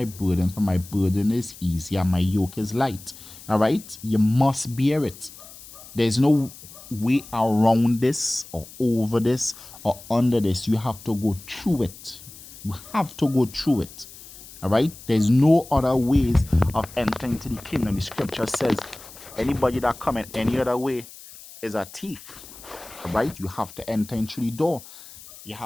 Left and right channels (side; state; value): left; noise; hiss, 18 dB below the sound